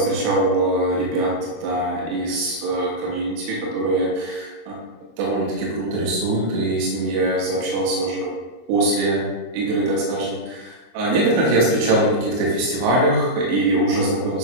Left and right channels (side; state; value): left; late; 24 ms